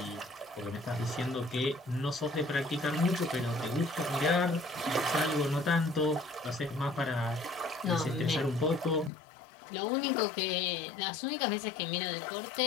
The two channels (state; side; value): drops out; right; at 9.1 s